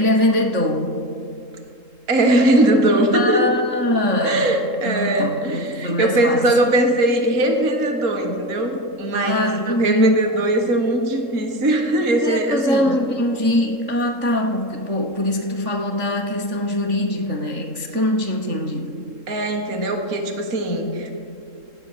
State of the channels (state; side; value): late; left; 3.7 ms